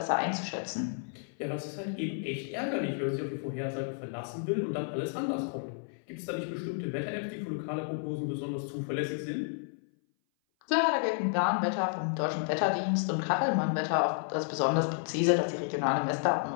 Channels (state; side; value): silent; right; 57 dB below the other